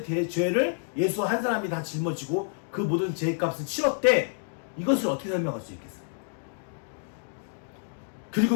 죄를 예수 한 사람이 다 짊어지고 그 모든 죄값을 치렀대. 이것을 어떻게 설명할 수 있겠어요?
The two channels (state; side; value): silent; right; digital silence